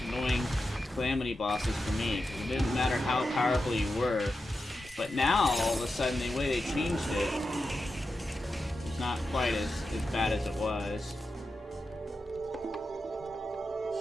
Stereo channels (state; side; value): normal; both; correlation 0.90